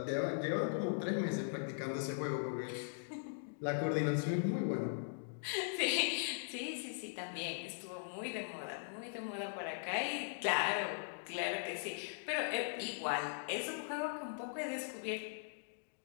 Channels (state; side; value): silent; right; digital silence